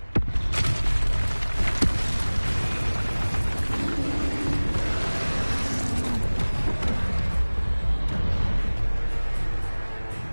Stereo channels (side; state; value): both; inverted; correlation -1.00